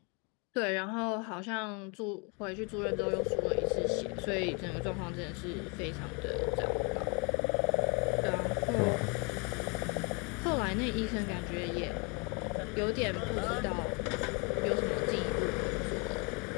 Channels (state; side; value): quieter; right; 32.7 dB